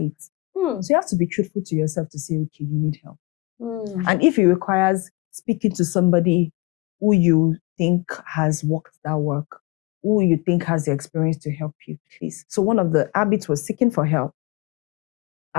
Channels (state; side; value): quieter; right; 23.0 dB